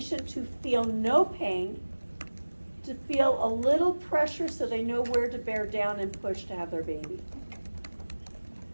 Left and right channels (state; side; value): inverted; both; correlation -1.00